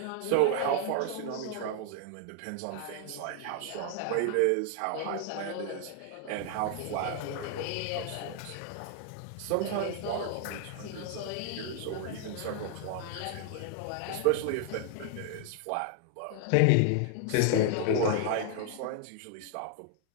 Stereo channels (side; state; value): both; different; correlation 0.00